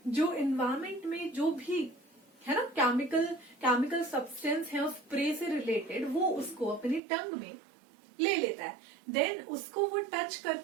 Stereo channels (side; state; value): left; drops out; at 7.0 s